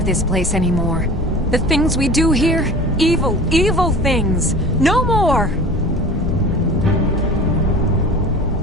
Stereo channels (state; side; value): normal; both; correlation 0.38